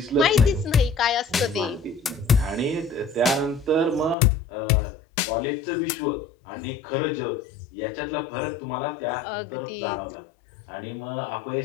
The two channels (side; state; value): right; drops out; at 4.2 s